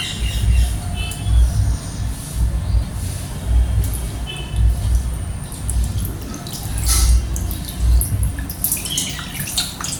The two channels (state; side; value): identical; both; correlation 1.00